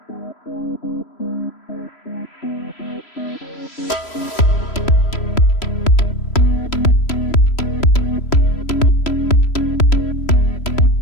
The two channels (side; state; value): right; late; 3.0 ms